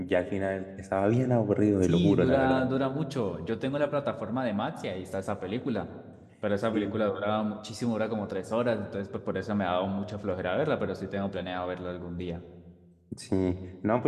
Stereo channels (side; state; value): both; identical; correlation 1.00